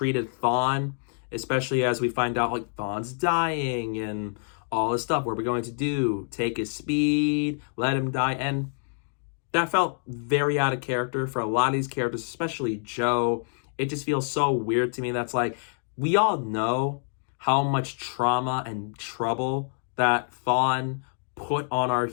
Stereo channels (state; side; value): silent; right; digital silence